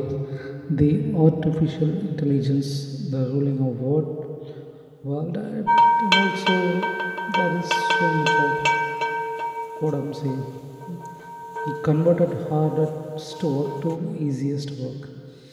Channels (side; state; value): both; identical; correlation 1.00